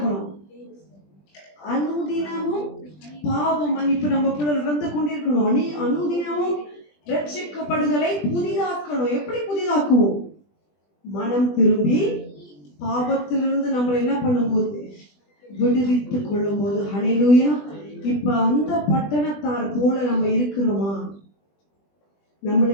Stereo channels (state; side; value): late; right; 20 ms